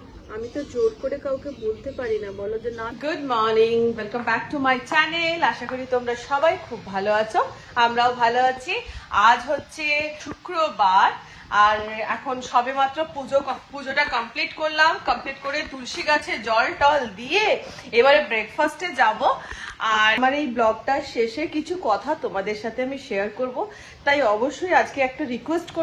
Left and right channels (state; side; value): identical; both; correlation 1.00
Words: আমি তো জোর করে কাউকে বলতে পারি না, বলো যে না। Good morning, welcome back to my channel. আশা করি তোমরা সবাই খুব ভালো আছো, আমরাও ভালো আছি। আজ হচ্ছে শুক্রবার আর এখন সবে মাত্র পুজোটা কমপ্লিট করলাম। কমপ্লিট করে তুলসী গাছে জল টল দিয়ে এবারে ব্রেকফাস্টে যাব। আর আমার এই ব্লগটার শেষে কিছু কথা তোমাদের সাথে আমি শেয়ার করব, তাই অবশ্যই আজকে একটা রিকোয়েস্ট